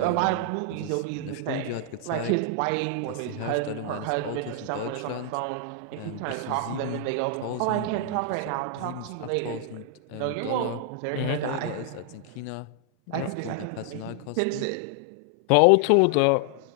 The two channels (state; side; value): different; both; correlation 0.00